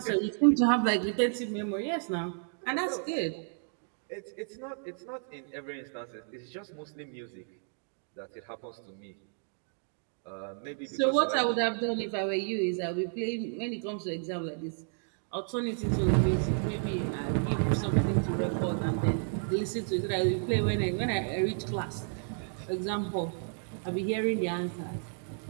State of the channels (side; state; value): left; silent; digital silence